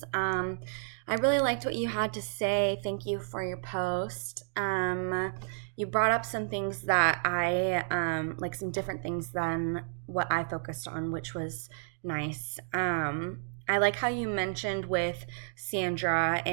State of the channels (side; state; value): left; silent; digital silence